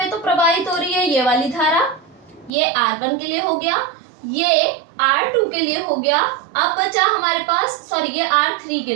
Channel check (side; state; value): left; drops out; at 2.5 s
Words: तो प्रवाहित हो रही है ये वाली धारा, ये R1 के लिए हो गया, ये R2 के लिए हो गया, अब बचा हमारे पास, सॉरी ये R3 के